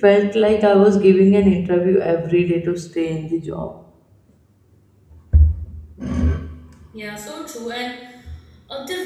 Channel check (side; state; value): both; identical; correlation 1.00